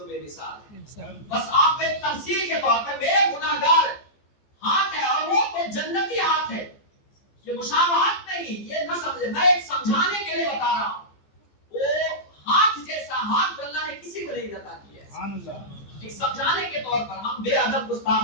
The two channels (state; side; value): late; right; 14 ms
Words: بے مثال ہے. بس آپ ایک تمثیل کے طور پر میرے گناہگار ہاتھ ہے اور وہ تو جنتی ہاتھ ہے. یہ مشابہت نہیں، یہ نہ سمجھے، میں ایک سمجھانے کے لیے بتا رہا ہوں. وہ ہاتھ جیسا ہاتھ اللہ نے کسی کو نہیں عطا کیا ہے. ایک سمجھانے کے طور پر ہم بے ادب گستاخ